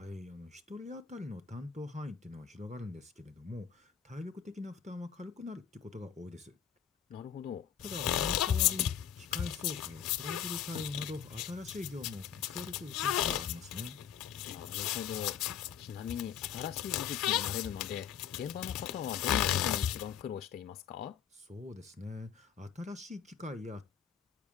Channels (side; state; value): right; quieter; 8.8 dB